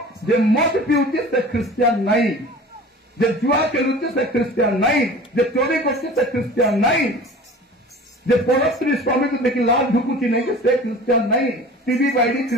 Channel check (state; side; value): normal; both; correlation 0.41